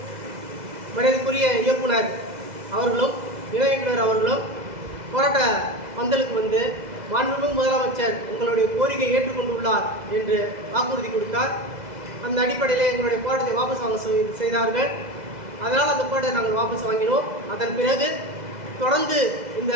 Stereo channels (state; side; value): late; left; 2.0 ms